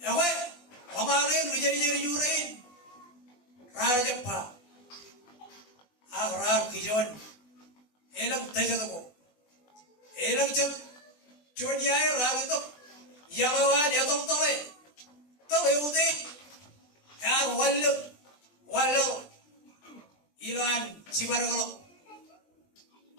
Ewe, amarin rijeri jurin, rar jempa, rar kijon, elang tejatuko, elang cep, cuniai rar itu, yalawan ya tole udah, yar walu, ilan sibarangalo,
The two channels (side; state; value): right; late; 20 ms